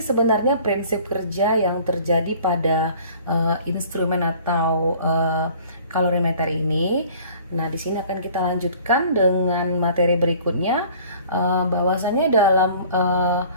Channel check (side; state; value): both; inverted; correlation -0.50